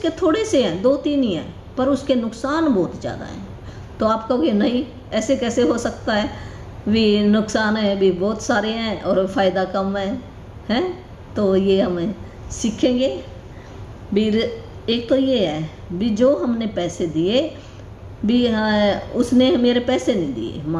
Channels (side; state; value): both; identical; correlation 1.00